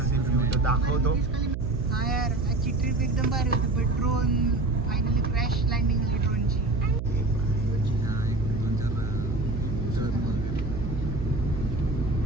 ते व्ह्यू तो दाखवतो. हाँ यार आजची ट्रिप एकदम भारी होती. पण ड्रोन फायनली क्रॅश लँडिंग झाली ड्रोनची.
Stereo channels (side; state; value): right; noise; hum, 5 dB below the sound